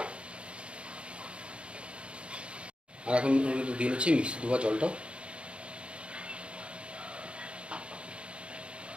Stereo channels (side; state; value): left; late; 0.058 ms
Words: আর এখন দিয়ে নিচ্ছি মিক্সি ধোয়া জলটাও।